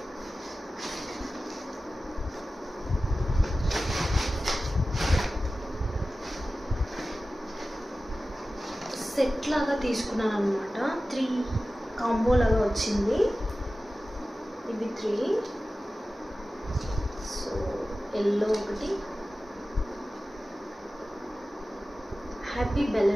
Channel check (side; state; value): both; normal; correlation 0.95